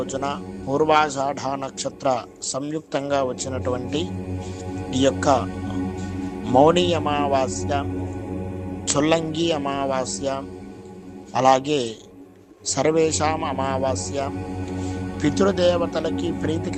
పూర్వాషాఢ నక్షత్ర సంయుక్తంగా వచ్చినటువంటి ఈ యొక్క మౌని అమావాస్య, చొల్లంగి అమావాస్య, అలాగే సర్వేషాం అమావాస్య, పితృదేవతలకి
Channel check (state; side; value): identical; both; correlation 1.00